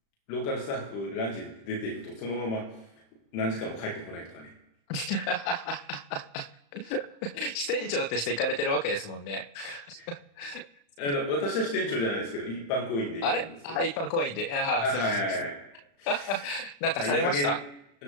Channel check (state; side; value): late; right; 35 ms